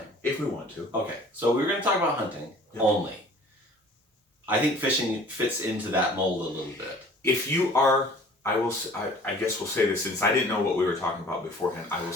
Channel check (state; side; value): normal; both; correlation 0.49